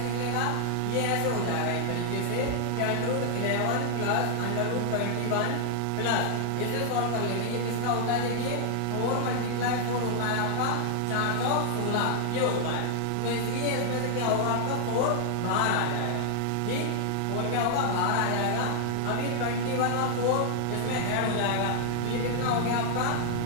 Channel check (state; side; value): different; both; correlation 0.00